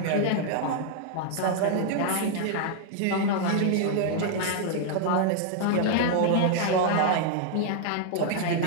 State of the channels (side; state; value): both; different; correlation 0.00